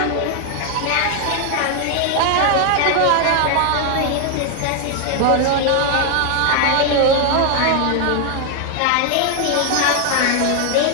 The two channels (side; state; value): both; different; correlation 0.00